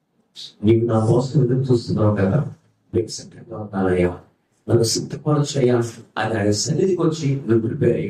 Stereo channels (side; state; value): both; identical; correlation 1.00